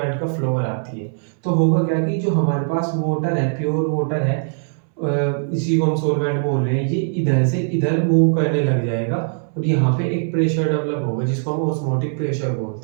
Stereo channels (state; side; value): silent; left; 65 dB below the other